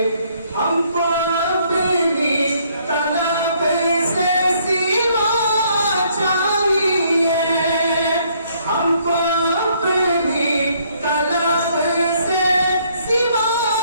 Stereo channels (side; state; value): both; inverted; correlation -0.66